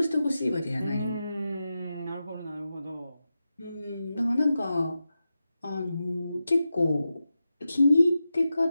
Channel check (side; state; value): both; inverted; correlation -0.91